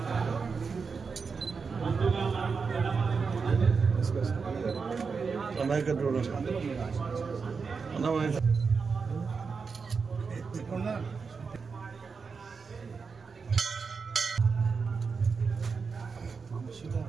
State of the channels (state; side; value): quieter; left; 5.2 dB